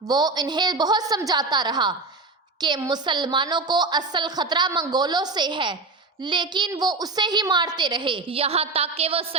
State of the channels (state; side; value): quieter; left; 3.7 dB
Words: وہ انہیں بہت سمجھاتا رہا کہ مسلمانوں کو اصل خطرہ منگولوں سے ہے، لیکن وہ اسے ہی مارتے رہے، یہاں تک کہ وہ